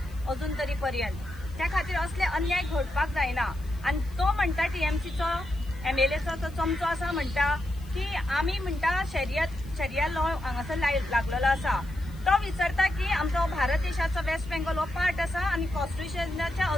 अजून तरी पर्यंत। त्या खातीर असले अन्याय घडपाक जायना आनी तो म्हणटा TMCचो MLAचो तो चमचो आसा म्हणटा की आमी म्हणटा शरिया लॉ हांगासर लागलेलो आसा। तो विचारता की आमचो भारत देशाचो वेस्ट बेंगॉल हो पार्ट आसा आनी कॉन्स्टिट्युशनाच्या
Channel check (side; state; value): left; noise; hiss, 26 dB below the sound